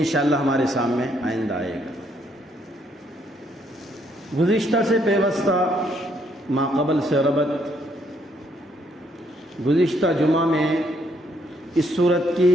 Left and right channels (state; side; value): normal; both; correlation 0.71